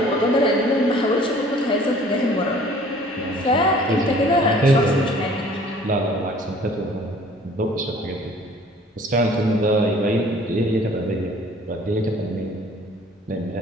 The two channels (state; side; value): normal; both; correlation 0.52